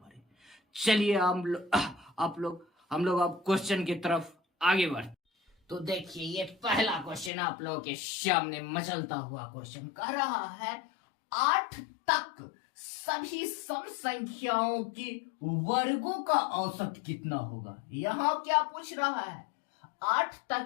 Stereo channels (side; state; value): right; drops out; at 7.3 s